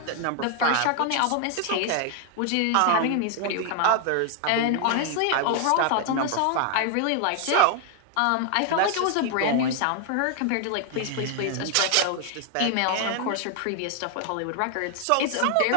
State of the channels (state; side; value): different; both; correlation 0.00